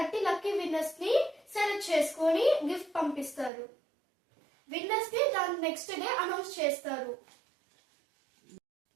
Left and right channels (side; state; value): left; drops out; at 3.5 s